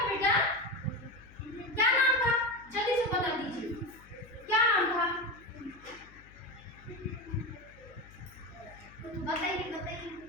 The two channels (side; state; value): left; noise; hum, 23 dB below the sound